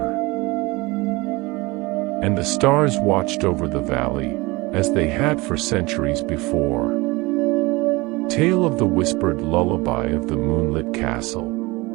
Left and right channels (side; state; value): left; quieter; 23.1 dB